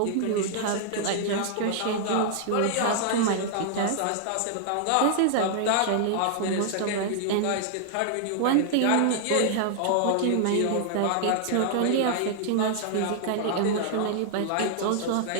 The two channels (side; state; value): both; different; correlation -0.01